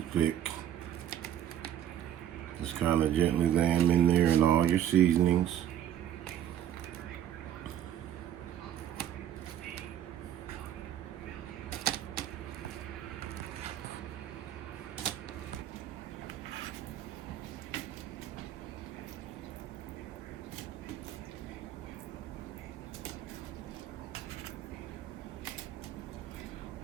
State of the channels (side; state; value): left; quieter; 10.9 dB